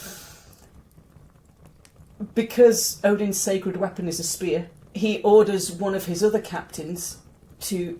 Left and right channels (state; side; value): identical; both; correlation 1.00